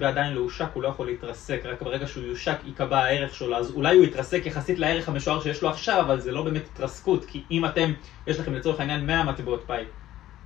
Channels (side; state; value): right; quieter; 13.8 dB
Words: עדיין לא הושק, הוא לא יכול להתרסק, רק ברגע שהוא יושק יקבע הערך שלו, אז אולי הוא יתרסק יחסית לערך המשוער שיש לו עכשיו, אבל זה לא באמת התרסקות, כי אם יש לכם לצורך העניין 100 מטבעות פאי,